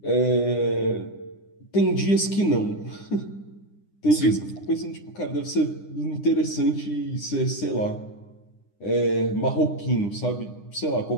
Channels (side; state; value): right; late; 9.9 ms